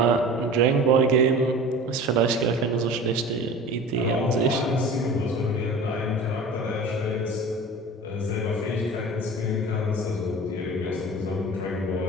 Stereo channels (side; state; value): both; normal; correlation 0.37